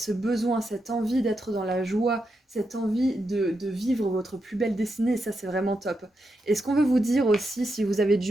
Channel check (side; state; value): both; normal; correlation 0.85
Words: besoin, cette envie d'être dans la joie, cette envie de vivre votre plus belle destinée. Et ça, c'est vraiment top. Et ce qu'on veut vous dire aussi, si vous avez